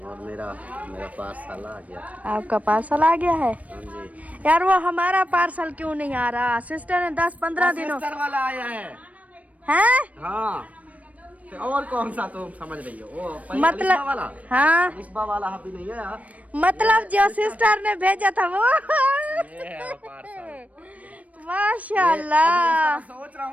मेरा पार्सल आ गया। आपका पार्सल आ गया है? हाँ जी। यार वो हमारा पार्सल क्यों नहीं आ रहा? सिस्टर ने 10-15 दिनों सिस्टर वाला आया है। हैं? हाँ तो और कौन सा तुम समझ रही हो? वो मतलब अलिस्बा वाला। हाँ अलिस्बा वाला अभी नहीं है। मतलब जो सिस्टर ने भेजा था वो। ये है पार्सल। माशाल्लाह। सोच रहा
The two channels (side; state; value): left; late; 0.068 ms